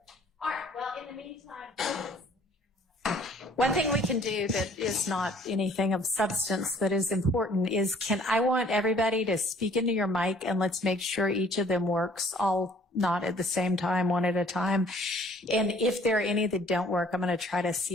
All right, well, in the meantime, one thing we can do that is not anything of substance that is important is I want everybody to speak into your mic and let's make sure each of them works, all not at the same time, one at a time. And if there are any that don't work, I'm going to try to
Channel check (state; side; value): normal; both; correlation 0.57